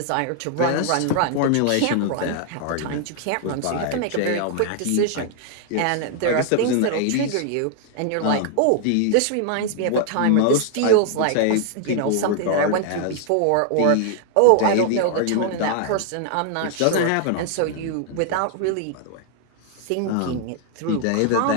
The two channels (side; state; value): both; different; correlation 0.00